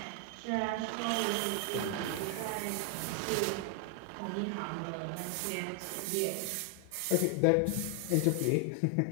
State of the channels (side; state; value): both; different; correlation 0.00